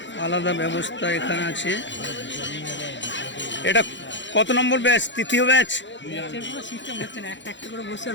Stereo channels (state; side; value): late; right; 0.53 ms